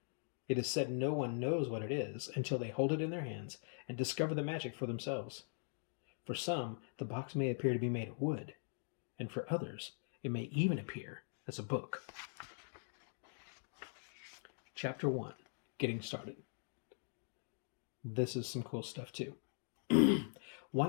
It is said no one knows what it is until they hold it in their hands and discover the magic for themselves. For some, the box may appear to be made of wood, and for others, it may even appear as a book. Chapter 1, Getting Started. This is some cool stuff too.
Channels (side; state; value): right; silent; digital silence